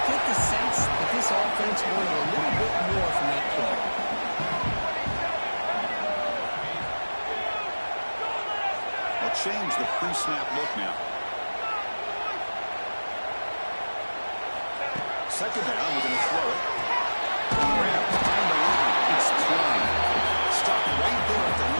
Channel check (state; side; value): inverted; both; correlation -1.00